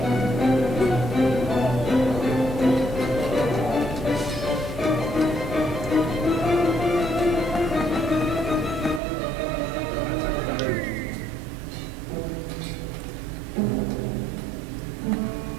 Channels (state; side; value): drops out; left; at 9.0 s